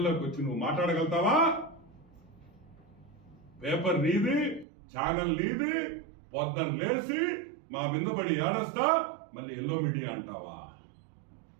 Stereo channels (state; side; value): drops out; left; at 4.7 s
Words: వచ్చి నువ్వు మాట్లాడగలుగుతావా? పేపర్ నీది, ఛానల్ నీది, పొద్దున లేసి మా మీద పడి ఏడస్తా మళ్ళీ ఎల్లో మీడియా అంటావా?